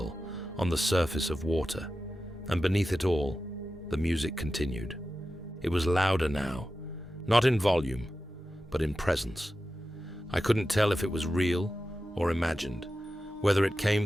on the surface of water, and beneath it all, the music continued. It was louder now, not in volume, but in presence. I couldn't tell if it was real or imagined, whether it came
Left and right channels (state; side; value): normal; both; correlation 0.93